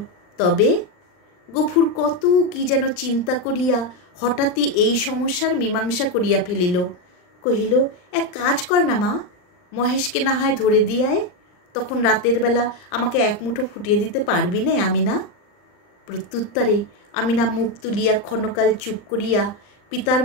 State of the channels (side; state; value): right; late; 39 ms